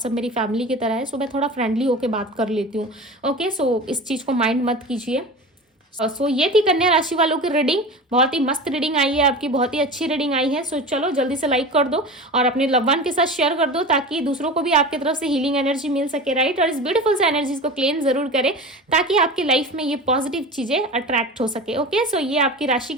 मेरी फैमिली की तरह है, सो मैं थोड़ा फ्रेंडली होके बात कर लेती हूँ। ओके सो इस चीज़ को माइंड मत कीजिए। सो ये थी कन्या राशि वालों की रीडिंग, बहुत ही मस्त रीडिंग आई है आपकी, बहुत ही अच्छी रीडिंग आई है। सो चलो जल्दी से लाइक कर दो और अपने लव वन के साथ शेयर कर दो, ताकि दूसरों को भी आपकी तरफ से हीलिंग एनर्जी मिल सके, राइट। और इस ब्यूटीफुल से एनर्जीज को क्लेम जरूर करें, ताकि आपकी लाइफ में ये पॉजिटिव चीजें अट्रैक्ट हो सके। ओके सो ये आपकी राशि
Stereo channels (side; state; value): both; normal; correlation 0.31